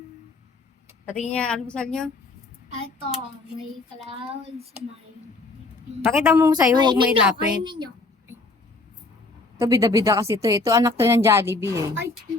Patingin niya, almusal niyo. Ito, may clouds, may... Pakita mo sa'yo, huwag may Kainin nyo, lapit. kainin nyo. Ito, bida-bida kasi ito. Ito, anak to ng Jollibee eh. Ay,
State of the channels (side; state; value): right; quieter; 3.4 dB